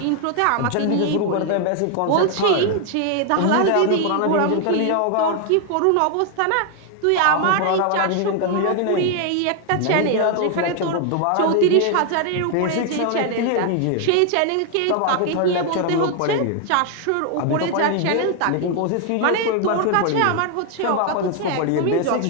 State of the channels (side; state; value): both; different; correlation 0.00